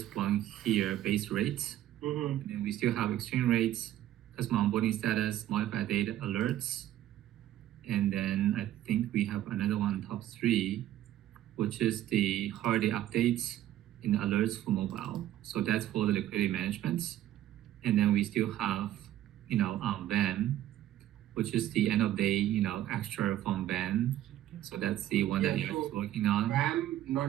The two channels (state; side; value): quieter; left; 13.0 dB